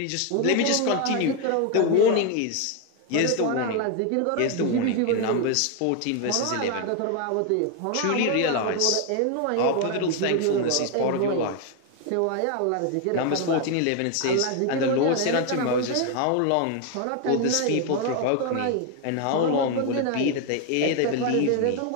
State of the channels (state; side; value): different; both; correlation 0.01